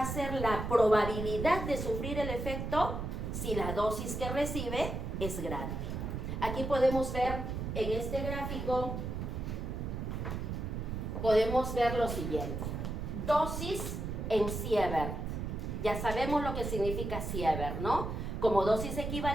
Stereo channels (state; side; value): noise; right; rumble, 4 dB below the sound